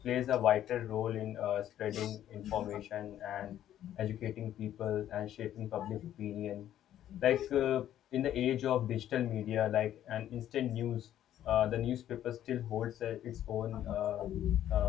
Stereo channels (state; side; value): quieter; right; 11.6 dB